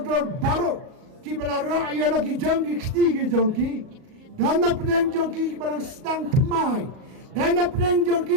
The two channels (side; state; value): left; late; 38 ms